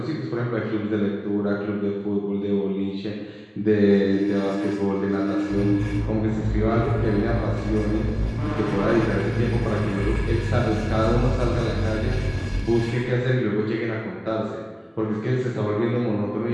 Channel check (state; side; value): identical; both; correlation 1.00